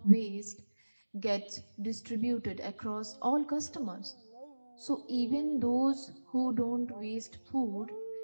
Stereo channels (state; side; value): inverted; both; correlation -1.00